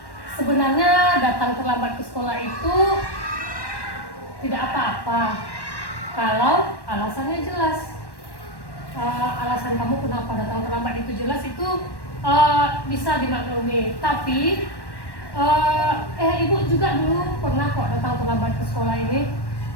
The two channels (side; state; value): right; late; 1.1 ms